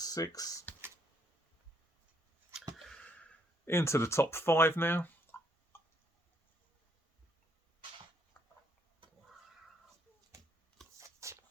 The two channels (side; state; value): both; normal; correlation 0.71